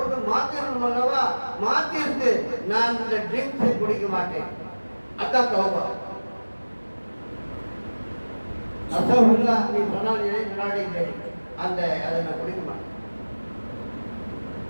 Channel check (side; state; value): both; inverted; correlation -1.00